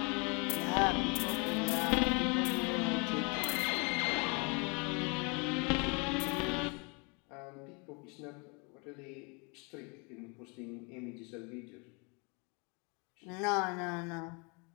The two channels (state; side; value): quieter; right; 32.2 dB